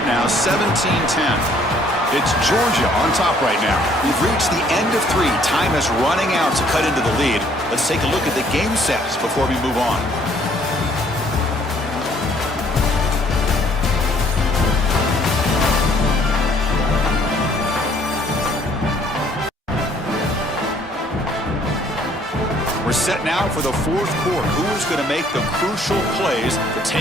now, 17-10. It's Georgia on top right now. We've reached the end of 3. Time is running out to cut into the lead. Let's take a look at the game sets before we move on. We're set now for the fourth quarter. Who is going to make the crucial plays to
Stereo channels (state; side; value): normal; both; correlation 0.62